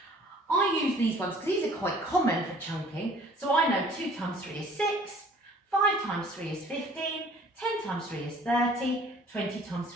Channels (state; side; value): normal; both; correlation 0.53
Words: I use these ones because these are quite common for chunking. So I know 2 times 3 is 6, 5 times 3 is 15, 10 times 3 is 30, 20 times